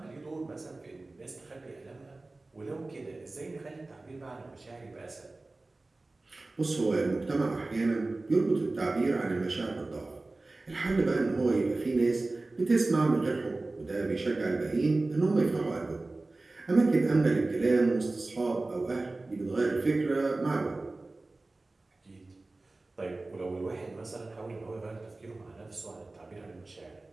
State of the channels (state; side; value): quieter; left; 3.2 dB